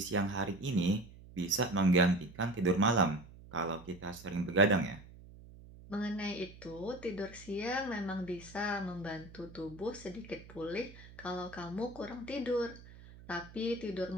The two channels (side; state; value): right; noise; hum, 19 dB below the sound